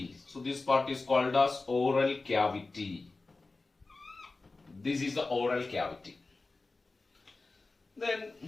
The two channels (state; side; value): quieter; right; 3.5 dB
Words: So this part is called as oral cavity. This is the oral cavity. Then